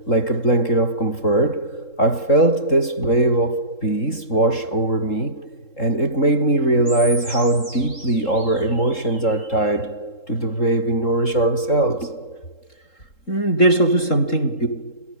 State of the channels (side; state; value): right; late; 3.7 ms